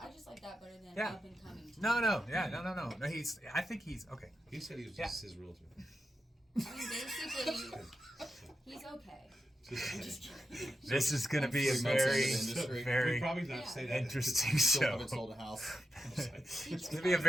I just like that better than Yeah. up-and-coming team. No. No. I think he's okay. He said he was just his realtor. I mean, basically, he's okay. I'm just kidding. This is gonna be a Three months into very, the industry. We very probably not say that. interesting Still show. haven't sold a house. It's gonna be a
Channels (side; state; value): both; normal; correlation 0.88